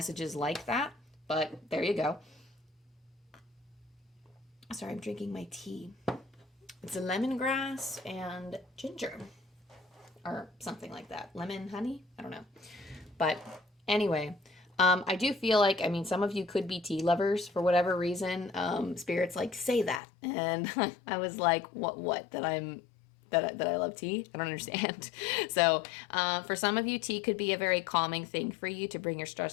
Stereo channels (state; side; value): drops out; right; at 20.0 s